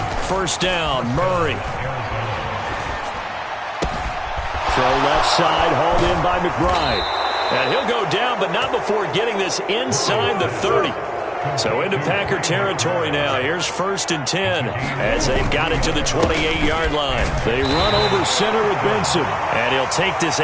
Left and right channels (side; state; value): both; identical; correlation 1.00